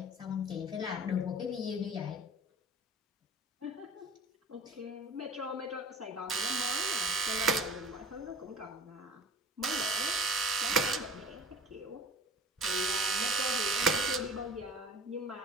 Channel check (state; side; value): normal; both; correlation 0.43